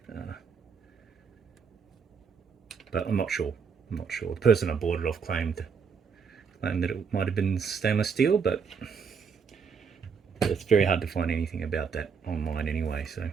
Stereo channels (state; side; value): quieter; left; 6.1 dB